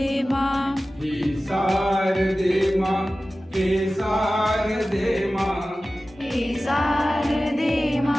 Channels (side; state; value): both; normal; correlation 0.96